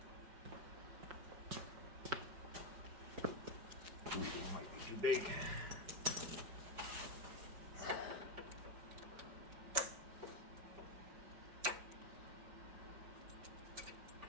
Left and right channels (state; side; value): late; left; 5.2 ms